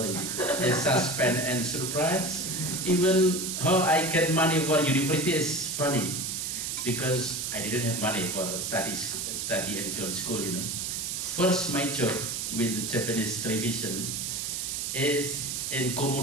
It's suspense and surprise. Even how I get money for university is funny, because I didn't have money for study in film school, you know. First my job with the Japanese television is in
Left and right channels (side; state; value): right; noise; hiss, 3 dB below the sound